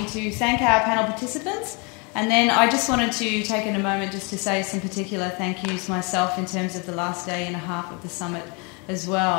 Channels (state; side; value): quieter; right; 32.1 dB